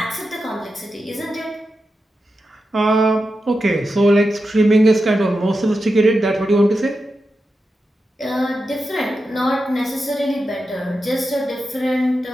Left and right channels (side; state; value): both; normal; correlation 0.89